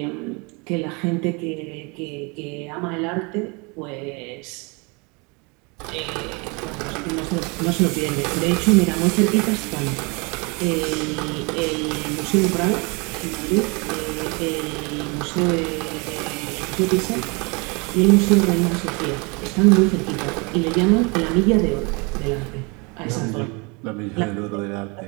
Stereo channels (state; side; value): quieter; left; 29.9 dB